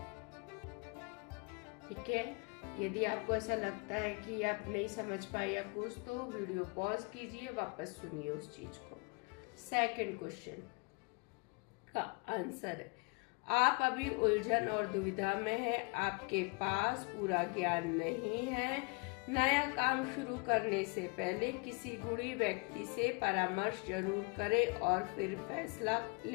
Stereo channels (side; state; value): right; quieter; 31.6 dB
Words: ठीक है, यदि आपको ऐसा लगता है कि आप नहीं समझ पाए या कुछ, तो वीडियो पॉज कीजिए, वापस सुनिए उस चीज को। सेकंड क्वेश्चन का आंसर है, आप अभी उलझन और दुविधा में हैं। आपके पास पूरा ज्ञान नहीं है। नया काम शुरू करने से पहले किसी गुणी व्यक्ति से परामर्श जरूर करें और फिर फैसला